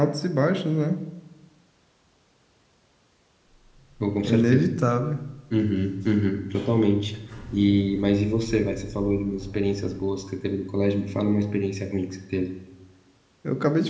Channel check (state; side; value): identical; both; correlation 1.00